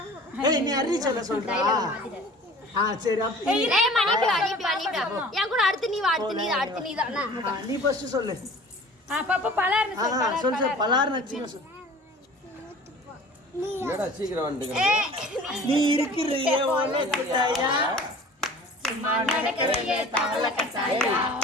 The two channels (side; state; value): both; normal; correlation 0.44